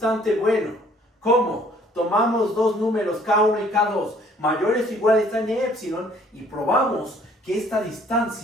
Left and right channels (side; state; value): both; normal; correlation 0.59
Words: bueno. ¿Cómo? Tomamos dos números k1 y k2 mayores o iguales a n epsilon y probamos que esta